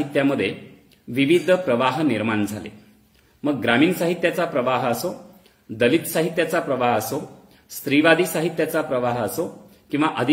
विविध प्रवाह निर्माण झाले. मग ग्रामीण साहित्याचा प्रवाह असो, दलित साहित्याचा प्रवाह असो, स्त्रीवादी साहित्याचा प्रवाह असो किंवा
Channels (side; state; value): both; identical; correlation 1.00